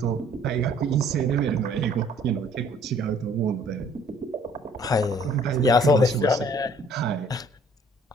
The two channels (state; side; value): normal; both; correlation 0.58